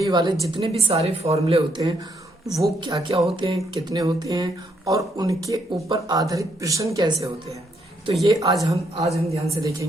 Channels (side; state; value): both; normal; correlation 0.74